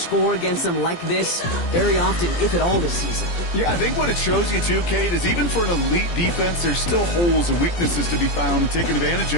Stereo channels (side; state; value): right; late; 17 ms